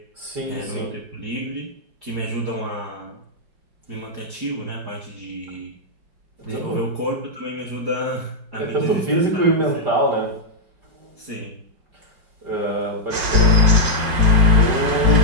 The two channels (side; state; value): left; late; 5.3 ms